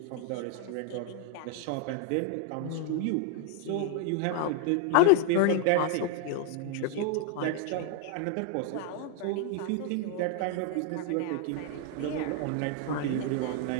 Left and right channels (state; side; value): different; both; correlation 0.00